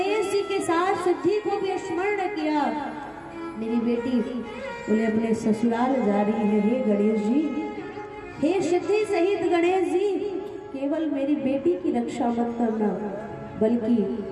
जी के साथ सिद्धि को भी स्मरण किया। मेरी बेटी बोले अपने ससुराल जा रही है। हे गणेश जी, हे सिद्धि सहित गणेश जी, केवल मेरी बेटी की रक्षा मत करना, बल्कि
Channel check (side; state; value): both; identical; correlation 1.00